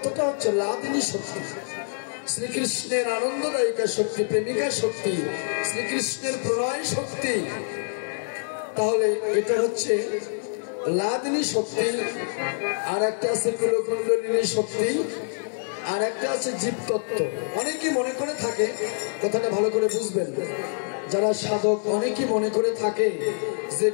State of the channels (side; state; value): right; silent; digital silence